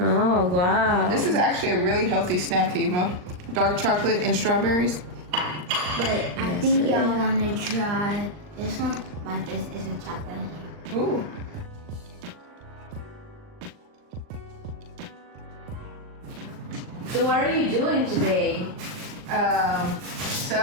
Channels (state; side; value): late; left; 39 ms